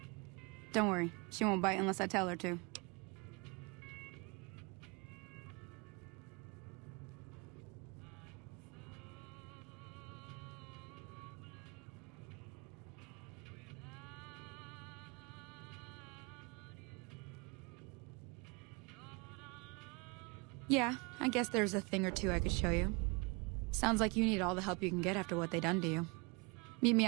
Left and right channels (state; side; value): quieter; left; 29.3 dB